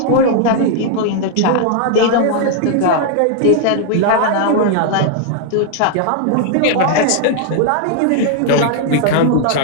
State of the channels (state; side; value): different; both; correlation 0.00